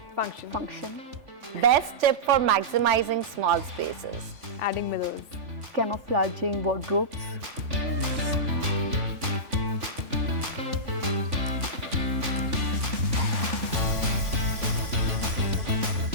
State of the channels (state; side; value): late; left; 3.5 ms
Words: Function. Best tip for maximizing small spaces? Adding mirrors. Camouflaging wardrobes.